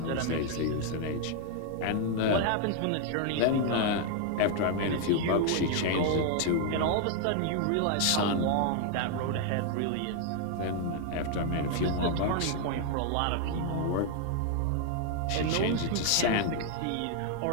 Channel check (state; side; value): different; both; correlation 0.00